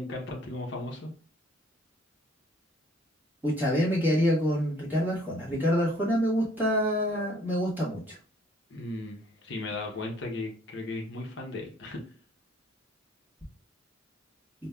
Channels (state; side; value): normal; both; correlation 0.60